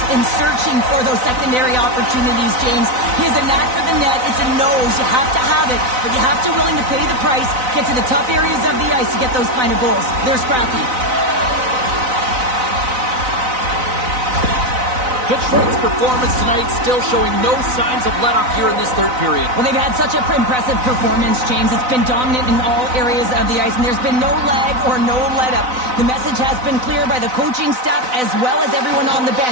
and searching for those secondary opportunities, James. He has a knack for the net. It's a nose. You have to have it, but you have to willing to pay the price, get to the tough areas of the ice to get those kind of goals. They're scrappy. Detroit's performance tonight still showing no signs of let-up here in this third period. Well, they've had such an impressive performance, James. It's been dominant in all areas of the ice, and there's been no lag or no let-up. The message has been clear by the coaching staff as well as everyone on the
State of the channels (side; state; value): left; late; 4.0 ms